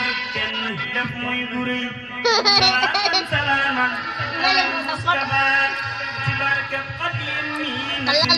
kenn def muy bu rëy salaatan salaaman ala Mustafa ci barkeb Xaadim mi na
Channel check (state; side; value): noise; left; hum, 30 dB below the sound